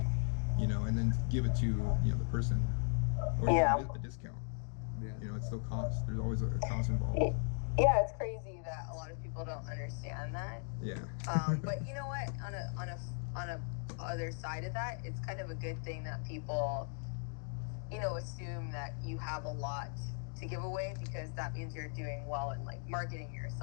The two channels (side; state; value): right; silent; 53 dB below the other